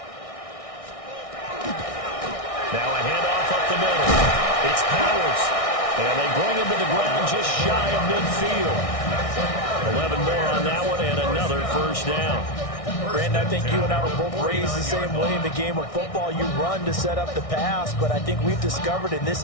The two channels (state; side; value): late; right; 1.6 ms